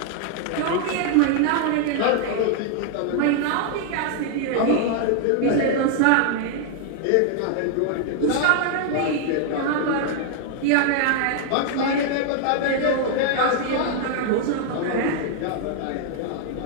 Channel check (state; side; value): different; both; correlation 0.00